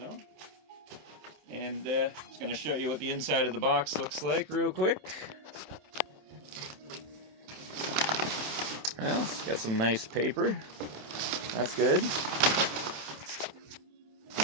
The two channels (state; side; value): late; left; 27 ms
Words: And just going to show you what the inside of the box looks like real quick. Well, it's got some nice paper. That's good.